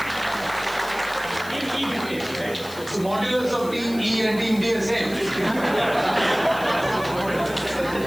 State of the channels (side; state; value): left; noise; hiss, 17 dB below the sound